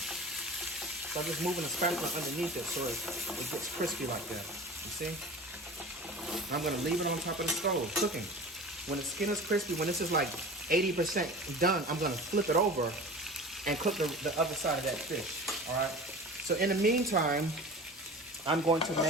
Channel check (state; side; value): normal; both; correlation 0.37